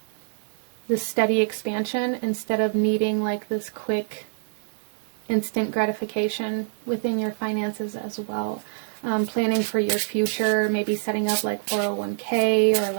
this steady expansion, instead of needing like this quick instant gratification within your finances as well. Planning for your future, maybe setting up like 401k or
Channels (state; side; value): silent; left; 55 dB below the other